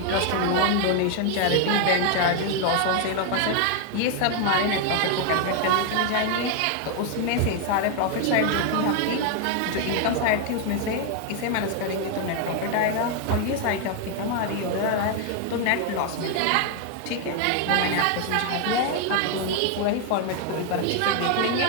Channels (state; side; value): different; both; correlation 0.00